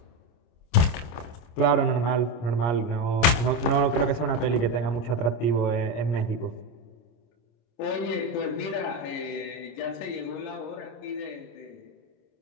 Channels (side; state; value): right; late; 26 ms